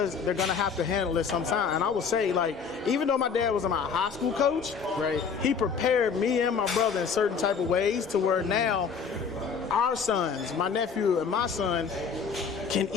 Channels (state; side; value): quieter; right; 6.0 dB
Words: they're going to have to handle it sometime. And I would say, like, even though my dad was my high school coach, he prepared me and my brother in certain type of ways to where now our sons, my nephew and my son, can